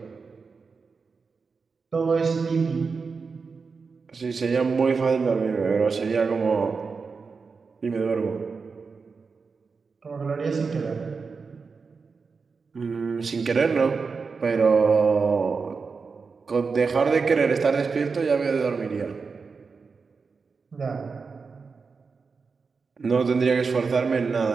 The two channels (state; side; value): quieter; left; 4.9 dB